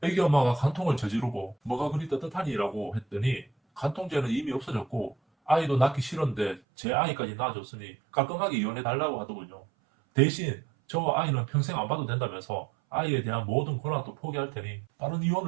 애기 엄마가 간통을 저지르고 뭐가 그리 떳떳하니라고 했더니 간통죄는 이미 없어졌고 아이도 낳기 싫은데 제 아이까지 낳아줬으니 깔끔하게 이혼해달라고 하더군요. 대신 저 아이는 평생 안 봐도 된다면서 아이에 대한 모든 권한도 포기할 테니 빠른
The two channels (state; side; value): drops out; left; at 6.6 s